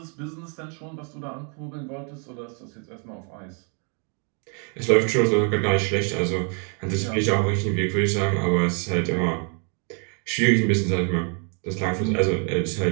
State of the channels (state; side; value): quieter; left; 39.2 dB